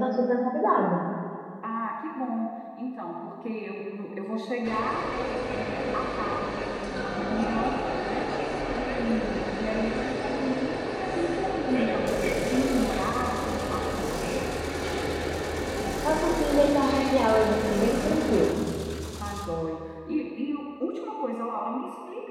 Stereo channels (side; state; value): both; identical; correlation 1.00